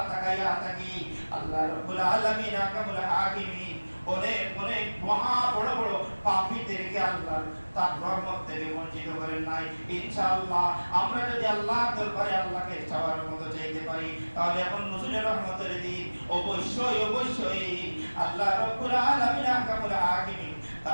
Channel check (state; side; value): inverted; both; correlation -1.00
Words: তাকাইয়া থাকি। আল্লাহ রাব্বুল আলামিন আহকামুল হাকিমিন অনেক অনেক মহা বড় বড় পাপীদেরকে আল্লাহ তার রহমত থেকে বঞ্চিত করেন নাই। ইনশাআল্লাহ আমরা যদি আল্লাহর দরবারে আল্লাহকে চাওয়ার মতো চাইতে পারি তাহলে এখন নজরুলের রহমতের দিন অবশ্যই আল্লাহ রাব্বুল আলামিন আহকামুল হাকিমিন